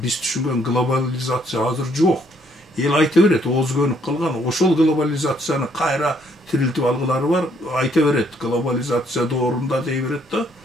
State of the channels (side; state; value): both; normal; correlation 0.68